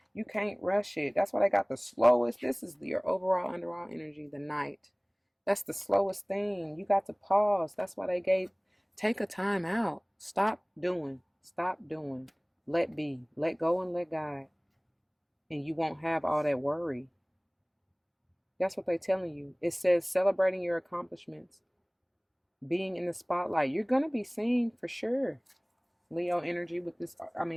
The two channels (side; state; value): both; identical; correlation 1.00